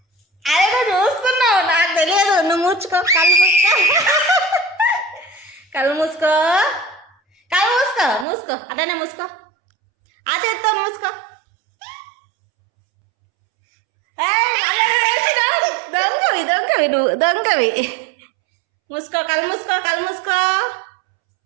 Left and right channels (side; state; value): left; drops out; at 8.2 s